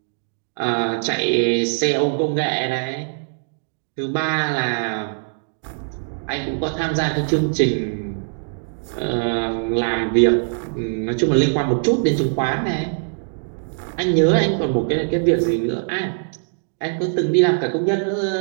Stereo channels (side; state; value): left; silent; digital silence